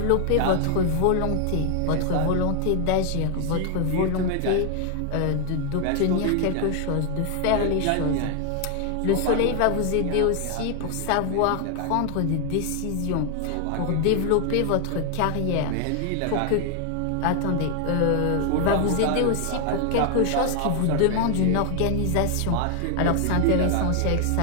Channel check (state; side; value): different; both; correlation 0.00